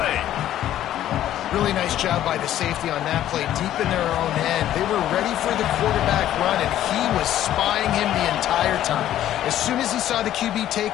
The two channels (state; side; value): quieter; right; 12.3 dB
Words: Really nice job by the safety on that play, deep in their own end. They were ready for the quarterback run, and he was spying him the entire time. As soon as he saw the QB